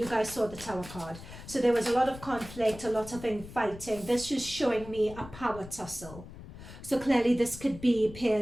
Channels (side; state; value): left; noise; rumble, 15 dB below the sound